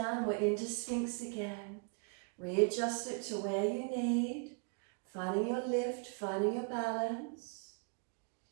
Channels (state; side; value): quieter; left; 37.6 dB